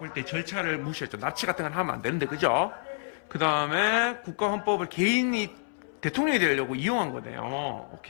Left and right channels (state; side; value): silent; right; 59 dB below the other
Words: 때 절차를 무시했죠. 납치 같은 건 하면 안 되는데, 그죠? 그 다음에 국가 헌법을 개인이 대통령이 되려고 이용한 거네요.